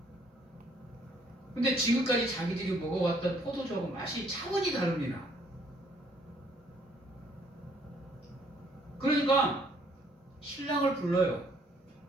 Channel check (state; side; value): normal; both; correlation 0.64